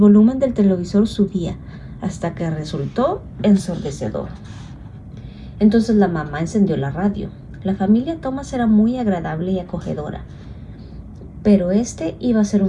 del televisor subía, hasta que resultó ensordecedor. Entonces la mamá encendió la radio. La familia Thomas era muy agradable y acogedora, pero este iba a ser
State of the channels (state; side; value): identical; both; correlation 1.00